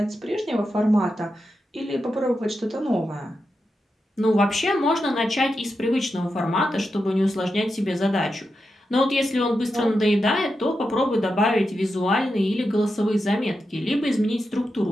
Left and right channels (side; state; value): both; normal; correlation 0.88